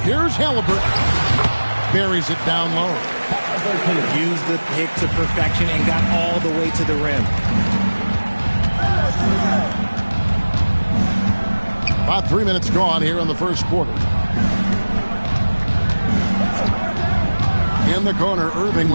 Here's Halliburton. Buries it down low. Used the pick to perfection and got all the way to the rim. About 3 minutes gone here in the first quarter. In the corner, Irving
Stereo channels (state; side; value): inverted; both; correlation -1.00